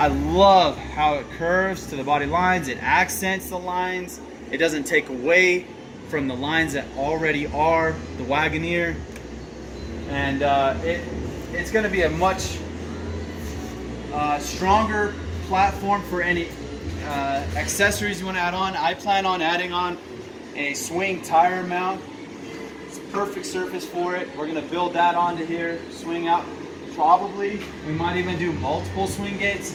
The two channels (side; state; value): both; identical; correlation 1.00